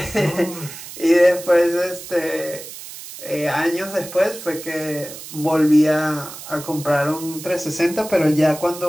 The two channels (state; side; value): noise; right; hiss, 13 dB below the sound